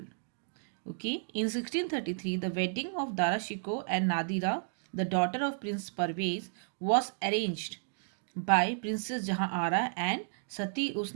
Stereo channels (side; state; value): left; silent; digital silence